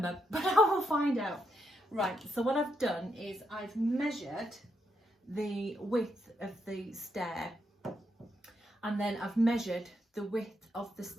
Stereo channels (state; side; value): normal; both; correlation 0.80